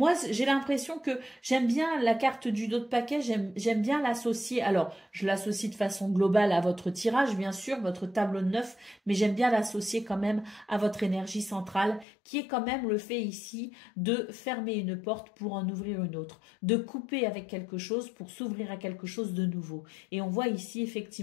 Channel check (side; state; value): right; drops out; at 12.1 s